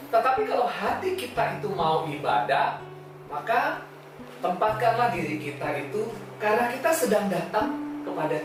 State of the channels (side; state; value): both; identical; correlation 1.00